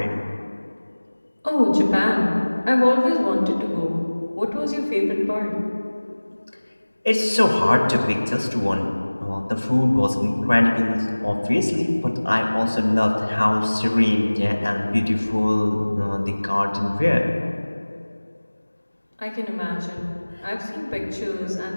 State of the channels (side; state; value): both; inverted; correlation -1.00